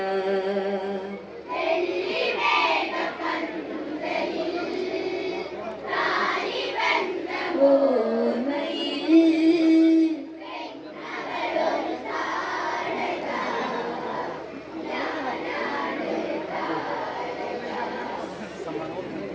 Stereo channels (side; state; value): both; identical; correlation 1.00